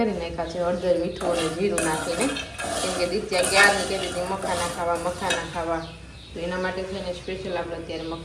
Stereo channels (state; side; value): identical; both; correlation 1.00